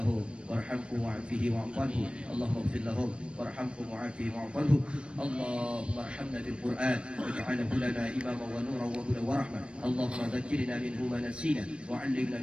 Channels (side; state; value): left; late; 0.057 ms